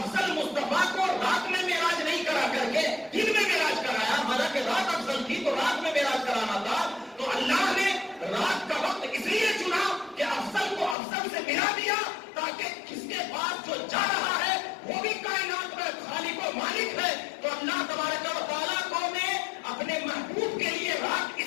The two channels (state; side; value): drops out; right; at 11.0 s